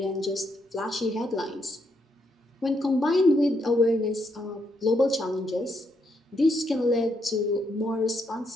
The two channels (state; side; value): normal; both; correlation 0.77